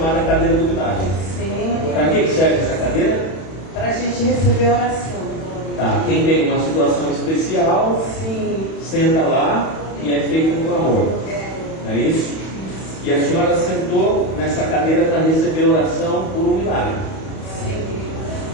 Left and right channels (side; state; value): right; late; 31 ms